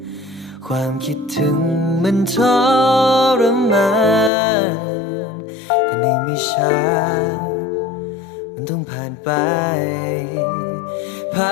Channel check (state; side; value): drops out; right; at 4.3 s